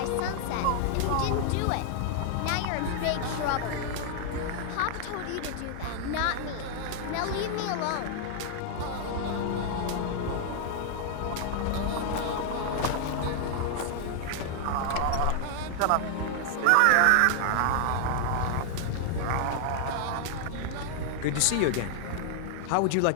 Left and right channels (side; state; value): both; different; correlation 0.00